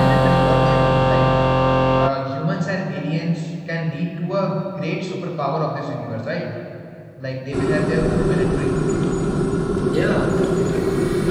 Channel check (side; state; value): both; identical; correlation 1.00